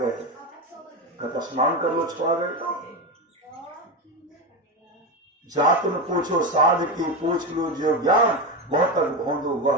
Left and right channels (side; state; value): both; normal; correlation 0.16